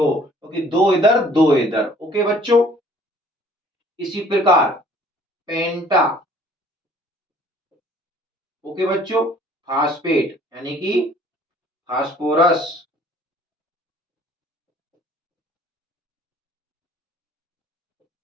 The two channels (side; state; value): both; normal; correlation 0.55